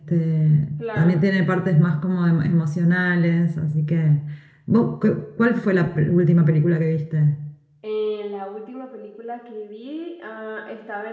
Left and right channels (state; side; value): identical; both; correlation 1.00